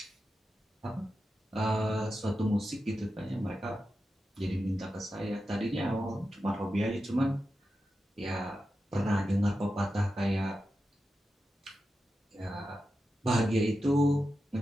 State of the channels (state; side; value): normal; both; correlation 0.90